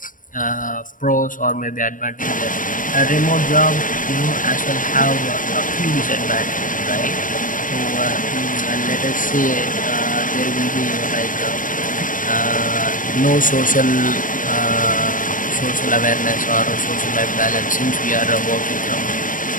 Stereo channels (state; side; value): late; right; 0.38 ms